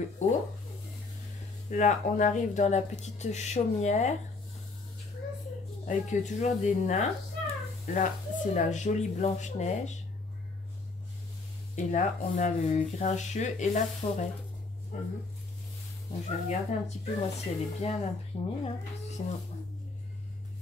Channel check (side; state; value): right; quieter; 3.7 dB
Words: haut. Là on arrive dans la petite chaumière avec toujours des nains. Là c'est la jolie Blanche-Neige. Et là on a le Grincheux et la forêt. Donc, je vais regarder un petit peu moi si elle est bien imprimée. Hein, parce que sinon...